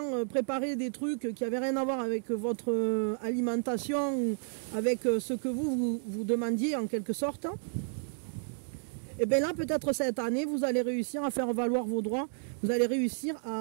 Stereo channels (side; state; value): left; silent; digital silence